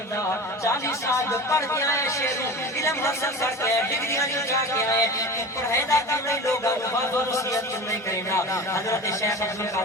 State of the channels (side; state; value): both; normal; correlation 0.33